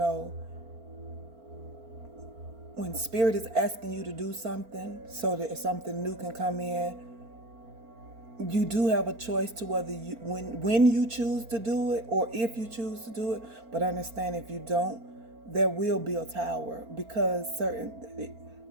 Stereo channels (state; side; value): late; left; 4.4 ms